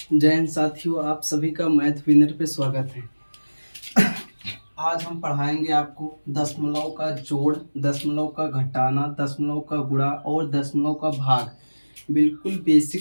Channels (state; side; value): inverted; both; correlation -1.00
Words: जय हिंद साथियों, आप सभी का मैथ विनर पे स्वागत है। आज हम पढ़ाएंगे आपको दशमलव का जोड़, दशमलव का घटाना, दशमलव का गुणा और दशमलव का भाग बिल्कुल